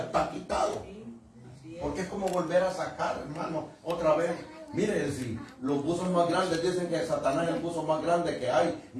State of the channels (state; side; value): identical; both; correlation 1.00